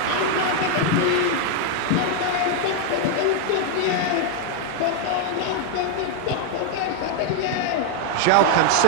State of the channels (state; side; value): different; both; correlation 0.00